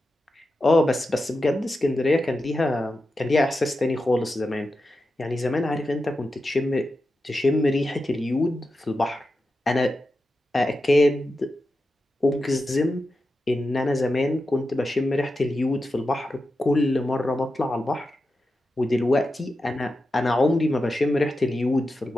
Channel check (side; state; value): both; normal; correlation 0.90